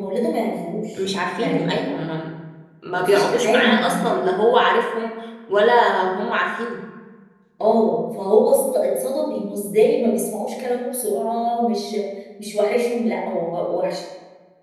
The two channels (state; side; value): identical; both; correlation 1.00